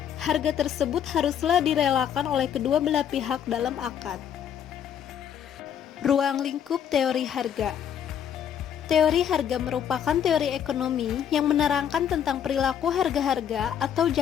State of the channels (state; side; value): quieter; right; 9.0 dB